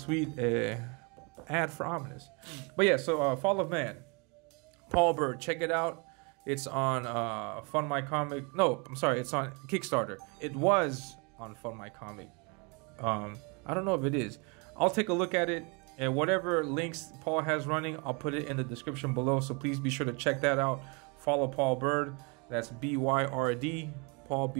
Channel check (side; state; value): left; quieter; 31.7 dB